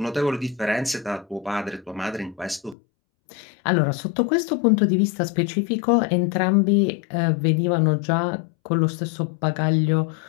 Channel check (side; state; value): right; drops out; at 2.8 s